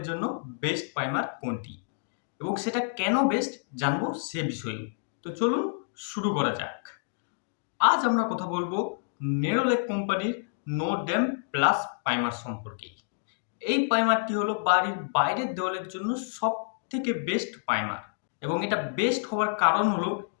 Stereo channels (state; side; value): silent; right; digital silence